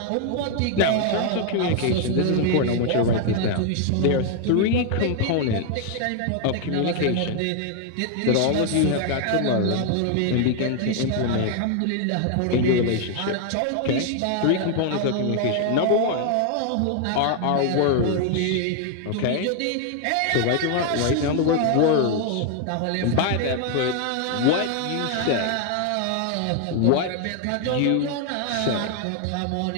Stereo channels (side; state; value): both; different; correlation 0.00